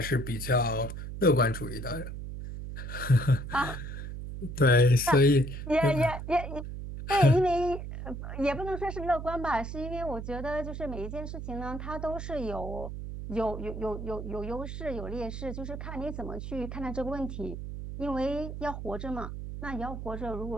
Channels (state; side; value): noise; right; hum, 7 dB below the sound